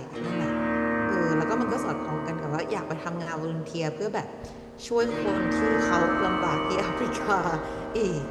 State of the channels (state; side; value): identical; both; correlation 1.00